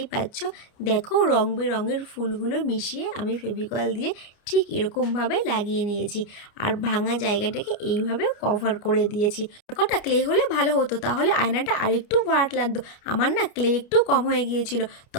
পাচ্ছ। দেখো রং বেরঙের ফুলগুলো মিশিয়ে আমি ফেভিকল দিয়ে ঠিক এরকমভাবে লাগিয়ে নিয়েছি, আর ভাঙা জায়গাটাকে এইভাবে কভার করে দিয়েছি। কটা ক্লে হলে ভালো হতো, তাহলে আয়নাটা আরেকটু ভাট লাগতো। আমার না ক্লে একটু কম হয়ে গিয়েছিল,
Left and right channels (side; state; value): right; late; 29 ms